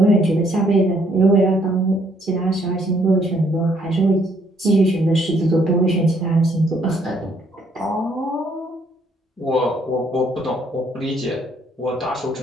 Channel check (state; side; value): normal; both; correlation 0.67